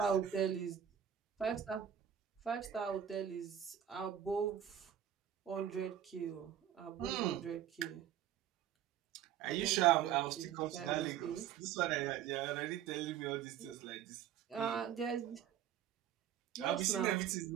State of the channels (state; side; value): quieter; left; 9.9 dB